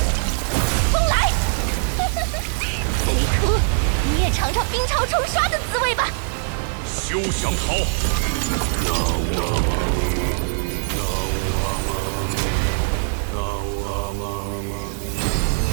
风来！贼秃，你也尝尝冰潮冲刷的滋味吧。休想逃！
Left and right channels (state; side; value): silent; left; 64 dB below the other